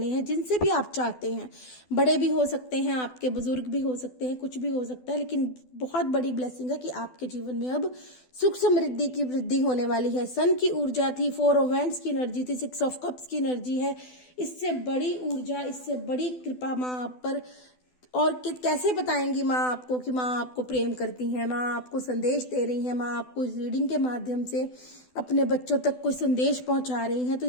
हैं, जिनसे भी आप चाहते हैं। बड़े भी हो सकते हैं, आपके बुजुर्ग भी हो सकते हैं, कुछ भी हो सकता है, लेकिन बहुत बड़ी ब्लेसिंग है कि आपके जीवन में अब सुख समृद्धि की वृद्धि होने वाली है। सन की ऊर्जा थी, 4 ऑफ वैंड्स की एनर्जी थी, 6 ऑफ कप्स की एनर्जी है। इससे बड़ी ऊर्जा, इससे बड़ी कृपा माँ आप पर। और कैसे बताएंगी माँ आपको कि माँ आपको प्रेम करती हैं, माँ आपको संदेश दे रही हैं, माँ आपको इस रीडिंग के माध्यम से अपने बच्चों तक कोई संदेश पहुंचा रही हैं। तो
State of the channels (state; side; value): late; right; 12 ms